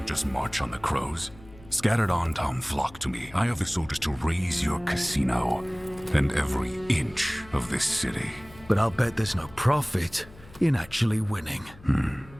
just march on the crows? Scattered on Tom flock to me. I have the soldiers to raise your casino and every inch of this city. But I'll bet there's no profit in actually winning.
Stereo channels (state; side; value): noise; left; hum, 21 dB below the sound